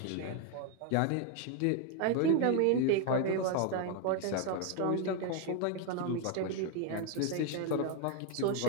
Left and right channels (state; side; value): different; both; correlation 0.01